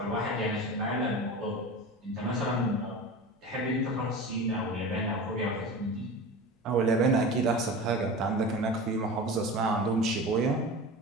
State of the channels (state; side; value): normal; both; correlation 0.32